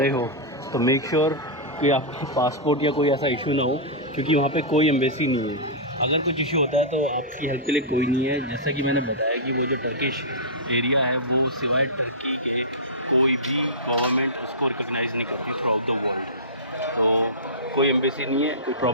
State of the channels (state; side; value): normal; both; correlation -0.15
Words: हो तो मेक श्योर कि आपका पासपोर्ट या कोई ऐसा इशू ना हो, क्योंकि वहाँ पे कोई एम्बेसी नहीं है। अगर कुछ इशू होता है तो आपकी हेल्प के लिए कोई नहीं है। जैसा कि मैंने बताया कि वो जो टर्किश एरिया है वो सिवाय टर्की के कोई भी गवर्नमेंट उसको रिकॉग्नाइज़ नहीं करती थ्रू आउट द वर्ल्ड। तो कोई एम्बेसी नहीं है, कोई